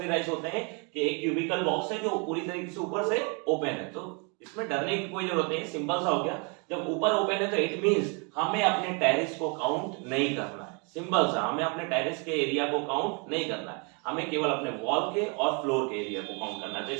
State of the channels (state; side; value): quieter; left; 34.1 dB